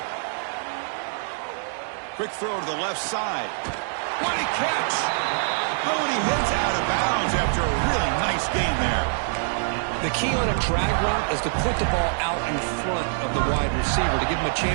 Quick throw to the left side. What a catch! Oh, and he hits out of bounds after a really nice gain there. The key on a drag route is to put the ball out in front of the wide receiver to give him a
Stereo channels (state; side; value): silent; left; digital silence